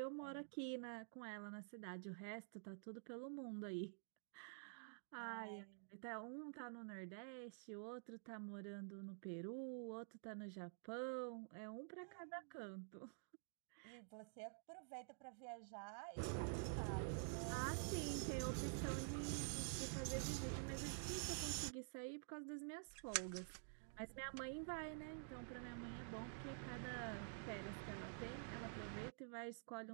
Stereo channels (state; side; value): silent; left; digital silence